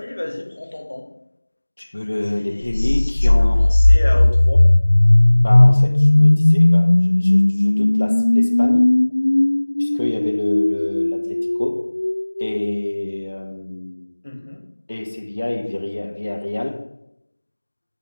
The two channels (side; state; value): both; inverted; correlation -1.00